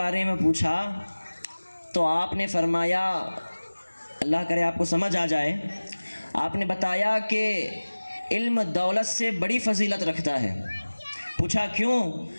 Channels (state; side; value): inverted; both; correlation -1.00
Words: में पूछा तो आपने फरमाया, अल्लाह करे आपको समझ आ जाए, आपने बताया कि इल्म दौलत से बड़ी फजीलत रखता है। पूछा क्यों,